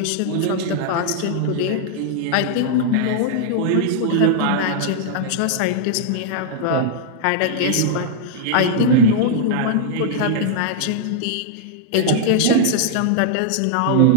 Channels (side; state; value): both; different; correlation -0.01